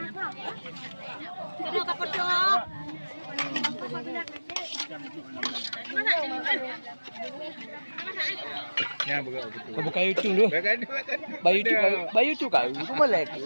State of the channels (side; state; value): both; inverted; correlation -1.00